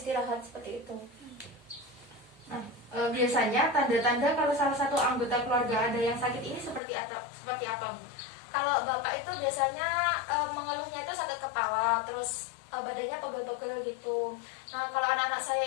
seperti itu. Nah, biasanya tanda-tanda kalau salah satu anggota keluarga ada yang sakit ini seperti apa, Bu? Kalau Bapak itu biasanya mengeluhnya itu sakit kepala, terus badannya pegel-pegel gitu. Nah, kalau anak-anak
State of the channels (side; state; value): right; drops out; at 6.8 s